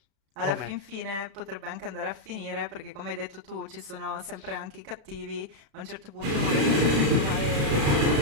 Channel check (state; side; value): late; left; 36 ms